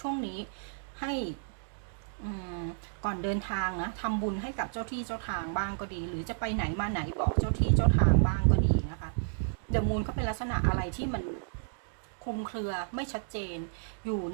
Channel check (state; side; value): silent; left; digital silence